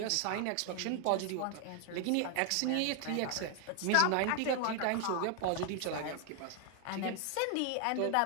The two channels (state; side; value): different; both; correlation 0.00